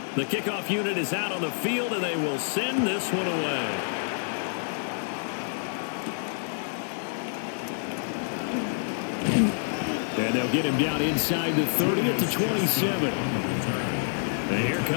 The kickoff unit is out on the field, and they will send this one away. And they'll get him down inside the 30 at the 27. And here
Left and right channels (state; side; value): silent; right; 60 dB below the other